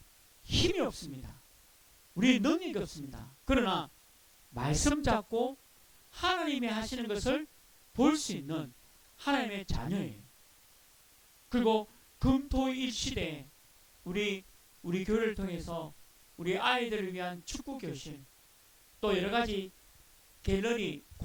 힘이 없습니다. 우리는 능력이 없습니다. 그러나 말씀 잡고 하나님이 하시는 것을 볼 수 있는 하나님의 자녀예요. 그리고 금토일 시대에 우리 교회를 통해서 우리 아이들을 위한 축구 교실, 또 여러 가지 갤러리,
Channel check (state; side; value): identical; both; correlation 1.00